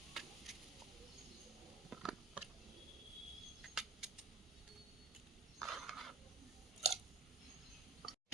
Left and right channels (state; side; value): quieter; left; 4.5 dB